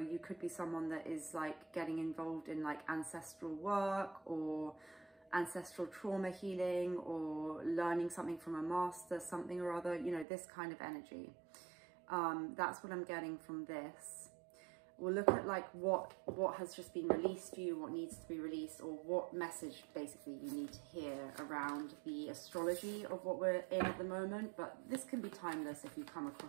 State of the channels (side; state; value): left; drops out; at 10.2 s